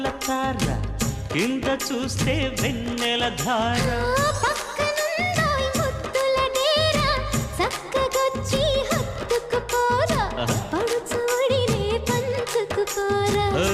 తార కింద చూస్తే వెన్నెల ధార పక్కనుందోయ్ ముద్దుల డేరా చక్కగొచ్చి హత్తుకుపోరా పడుచోడినే పంచుకుపోరా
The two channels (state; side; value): identical; both; correlation 1.00